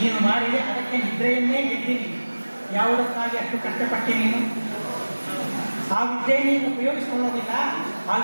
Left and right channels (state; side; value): inverted; both; correlation -1.00